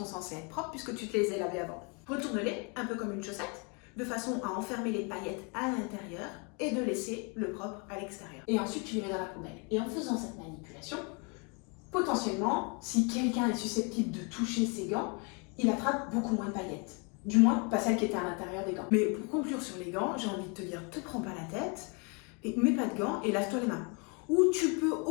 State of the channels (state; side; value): quieter; right; 33.7 dB